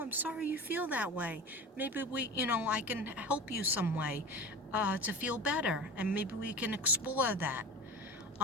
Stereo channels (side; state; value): both; normal; correlation 0.32